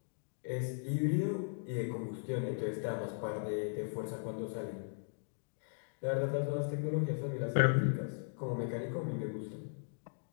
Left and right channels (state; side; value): silent; right; digital silence